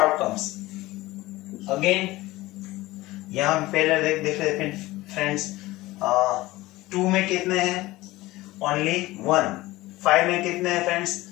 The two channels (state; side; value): quieter; right; 18.8 dB